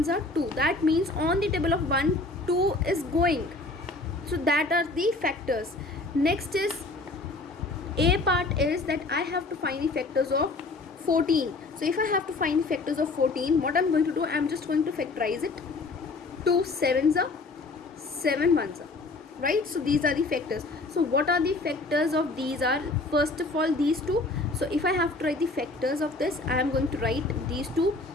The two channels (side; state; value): right; quieter; 3.3 dB